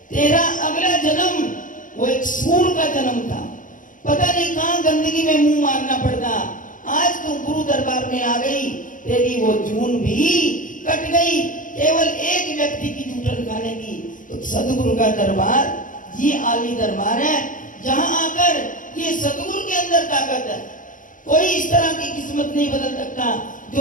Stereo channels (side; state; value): right; late; 0.38 ms